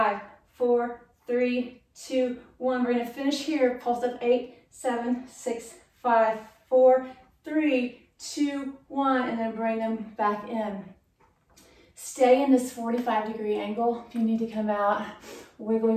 4, 3, 2, 1. We're gonna finish here, pulse up, 8, 7, 6, 5, 4, 3, 2, 1, and then bring them back in. Stay in this 45-degree angle. If you need to come out, wiggle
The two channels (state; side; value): identical; both; correlation 1.00